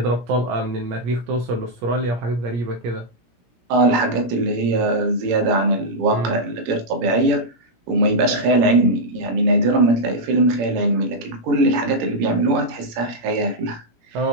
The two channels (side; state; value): left; late; 17 ms